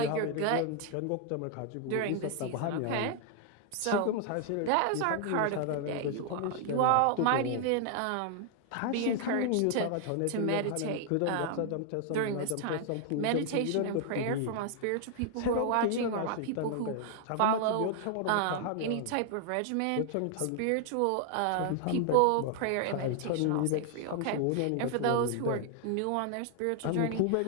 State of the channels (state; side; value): different; both; correlation 0.00